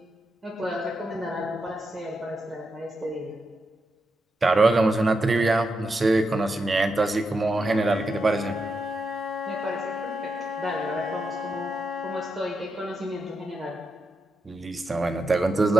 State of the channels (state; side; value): normal; both; correlation 0.85